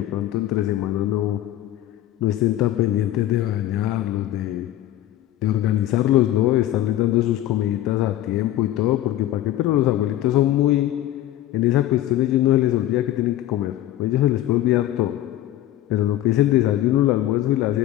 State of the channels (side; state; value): right; quieter; 13.7 dB